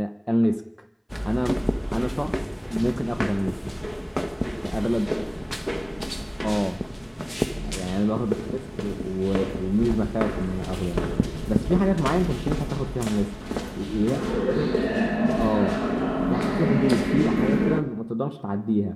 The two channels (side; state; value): both; identical; correlation 1.00